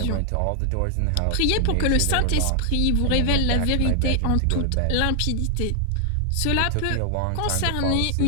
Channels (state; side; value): different; both; correlation 0.00